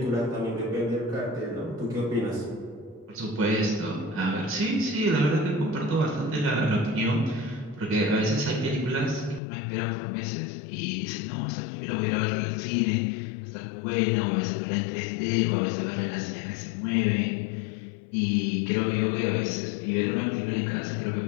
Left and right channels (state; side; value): drops out; right; at 9.4 s